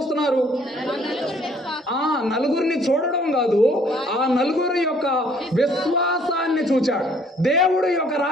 నలుగురిని చూడడం కాదు, ఆ నలుగురి యొక్క విశ్వాసాన్ని చూచాడు. దేవుడు యొక్క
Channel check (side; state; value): both; normal; correlation 0.61